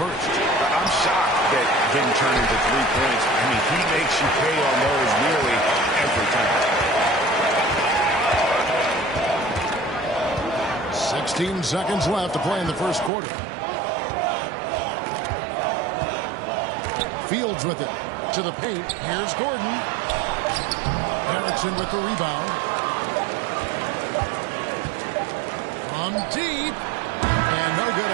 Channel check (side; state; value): left; drops out; at 13.1 s